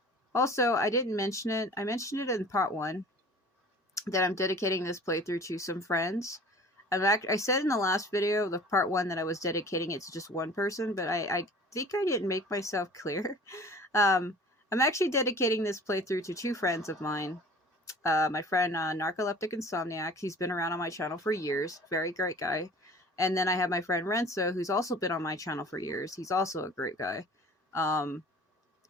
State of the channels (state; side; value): normal; both; correlation 0.45